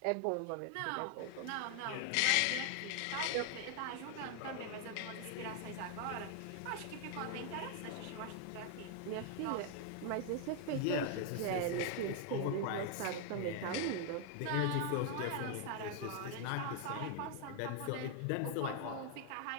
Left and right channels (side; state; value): both; different; correlation 0.00